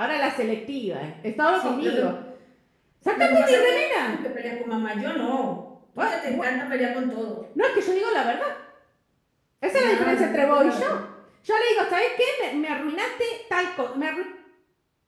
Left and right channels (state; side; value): identical; both; correlation 1.00